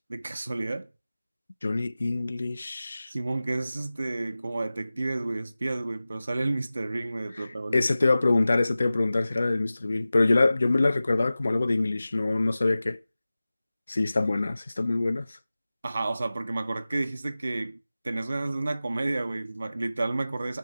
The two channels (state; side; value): inverted; both; correlation -0.96